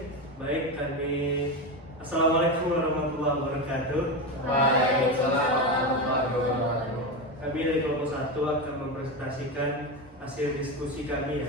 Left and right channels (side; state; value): both; normal; correlation 0.17